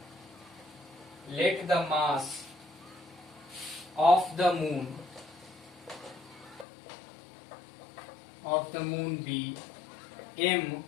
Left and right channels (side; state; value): right; drops out; at 6.7 s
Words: of the moon be m,